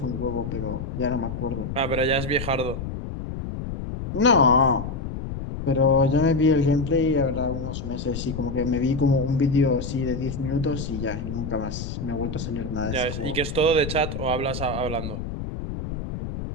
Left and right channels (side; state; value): left; noise; rumble, 6 dB below the sound